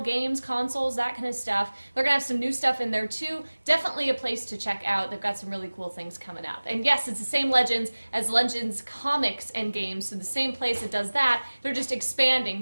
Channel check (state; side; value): inverted; both; correlation -1.00